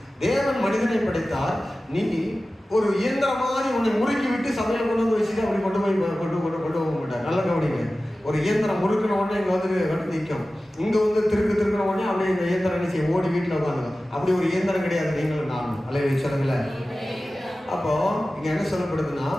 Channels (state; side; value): normal; both; correlation 0.96